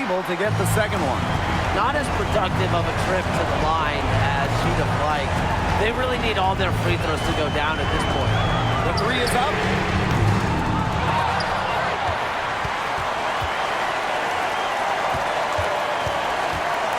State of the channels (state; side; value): identical; both; correlation 1.00